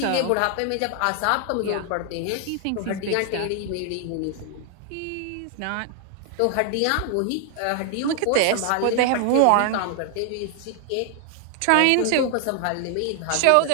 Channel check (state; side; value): different; both; correlation 0.00